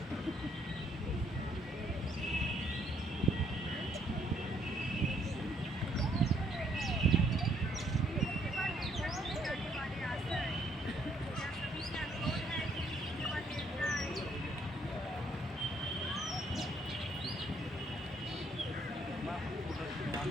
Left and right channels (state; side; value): normal; both; correlation 0.68